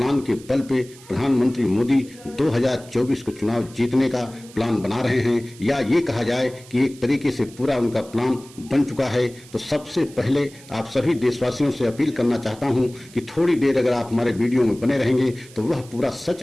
के बल पे प्रधानमंत्री मोदी 2024 को चुनाव जीतने का प्लान बना रहे हैं, या ये कहा जाए कि एक तरीके से पूरा उनका प्लान बन चुका है। तो सबसे पहले आप सभी देशवासियों से अपील करना चाहता हूं कि थोड़ी देर अगर आप हमारे वीडियो में बने रहेंगे तो वह पूरा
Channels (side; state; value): right; noise; hiss, 22 dB below the sound